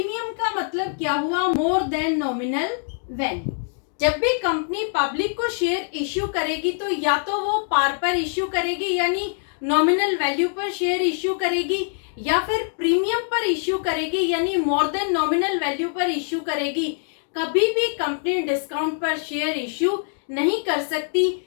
का मतलब क्या हुआ, मोर देन नॉमिनल वैल्यू। जब भी कंपनी पब्लिक को शेयर इश्यू करेगी तो या तो वो पार पर इश्यू करेगी, यानी नॉमिनल वैल्यू पर शेयर इश्यू करेगी, या फिर प्रीमियम पर इश्यू करेगी, यानी मोर देन नॉमिनल वैल्यू पर इश्यू करेगी। कभी भी कंपनी डिस्काउंट पर शेयर इश्यू नहीं कर सकती,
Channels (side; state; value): right; silent; 62 dB below the other